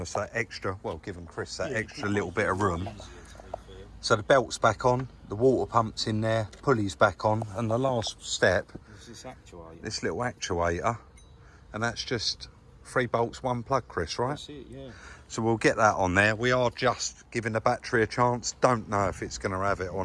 that extra, well, given Chris that extra little bit of room. So the belt's back on, the water pump's in there, pulley's back on, and the last step This actuator. this little actuator, and that's just 3 bolts, 1 plug, Chris, right? That's it, yeah. So we'll get that on there. We are just giving the battery a chance. Don't know if it's going to have it or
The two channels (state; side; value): identical; both; correlation 1.00